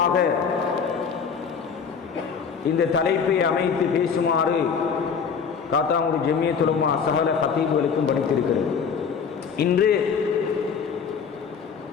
இந்த தலைப்பை அமைத்து பேசுமாறு காத்தாங்குடி ஜமியத் உலமா சகல கத்தீபுகளுக்கும் படித்திருக்கிறது. இன்று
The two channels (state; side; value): quieter; right; 6.3 dB